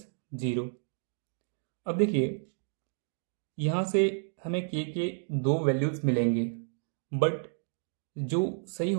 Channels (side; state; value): left; silent; digital silence